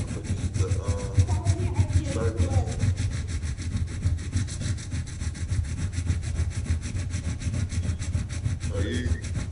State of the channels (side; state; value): both; identical; correlation 1.00